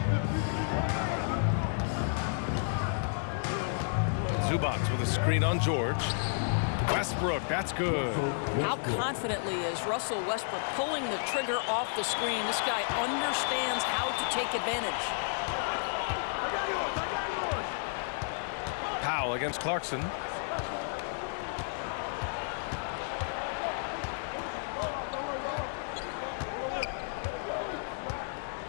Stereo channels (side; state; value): right; silent; 56 dB below the other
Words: Zubats with a screen on George. Westbrook, that's good. How confidently is Russell Westbrook pulling the trigger off the screen? This guy understands how to take advantage. Powell against Clarkson.